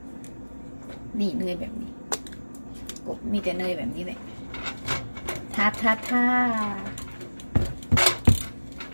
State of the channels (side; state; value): both; inverted; correlation -1.00